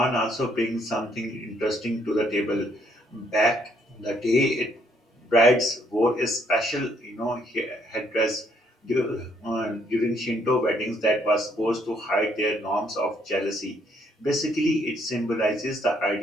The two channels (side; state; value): both; normal; correlation 0.69